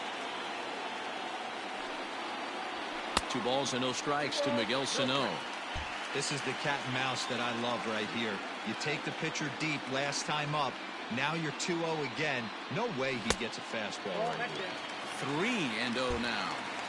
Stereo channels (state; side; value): identical; both; correlation 1.00